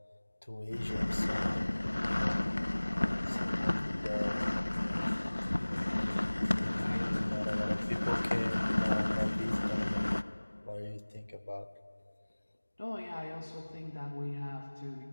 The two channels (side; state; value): both; inverted; correlation -1.00